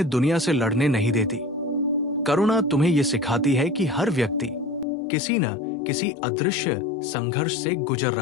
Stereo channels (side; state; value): right; drops out; at 4.9 s